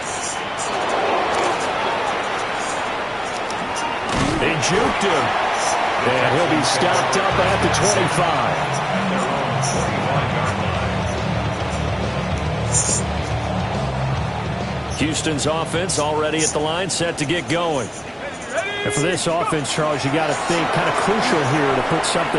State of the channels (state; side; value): identical; both; correlation 1.00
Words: They juked him. And he'll be stopped up at the 25. Houston's offense already at the line, set to get going. And for this offense, Charles, you got to think kind of crucial here to put